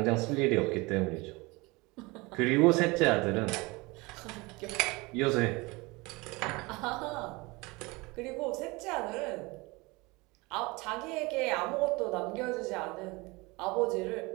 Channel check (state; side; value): quieter; left; 24.3 dB